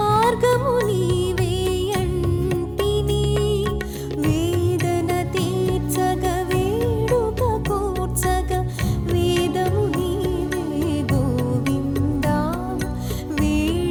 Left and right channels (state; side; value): identical; both; correlation 1.00